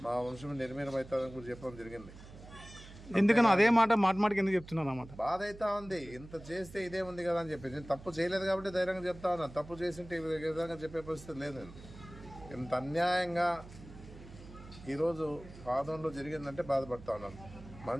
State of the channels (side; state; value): right; noise; hum, 17 dB below the sound